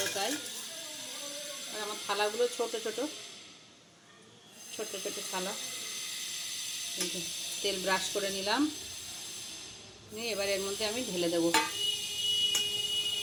তাই। আর আমার থালাগুলো ছোট ছোট ছোট ছোট থালা। তেল ব্রাশ করে নিলাম, নিয়ে এবার এর মধ্যে আমি ঢেলে দেবো।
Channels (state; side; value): identical; both; correlation 1.00